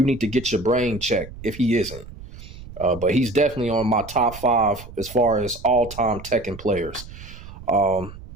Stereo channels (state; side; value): noise; right; rumble, 15 dB below the sound